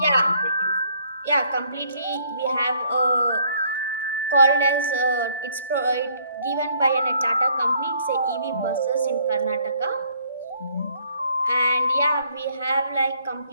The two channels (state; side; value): inverted; both; correlation -0.64